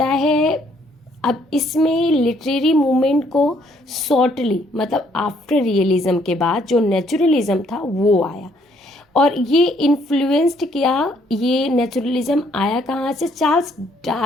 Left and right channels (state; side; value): normal; both; correlation 0.67